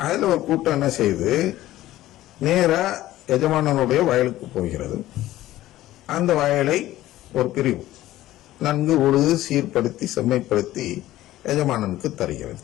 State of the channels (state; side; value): quieter; right; 15.2 dB